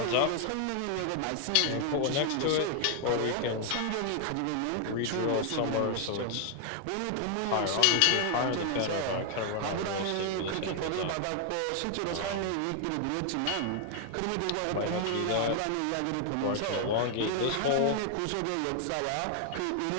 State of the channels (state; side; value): different; both; correlation 0.00